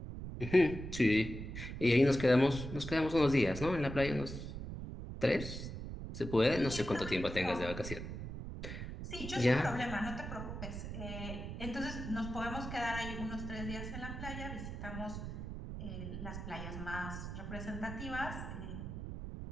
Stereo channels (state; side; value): noise; right; rumble, 7 dB below the sound